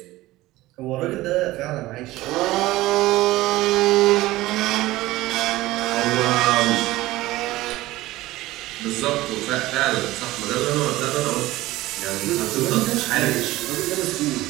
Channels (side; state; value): left; quieter; 17.7 dB